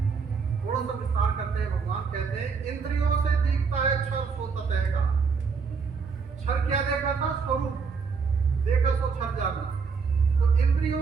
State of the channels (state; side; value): quieter; left; 5.3 dB